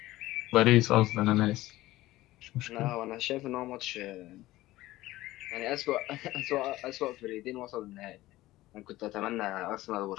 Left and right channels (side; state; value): right; quieter; 17.0 dB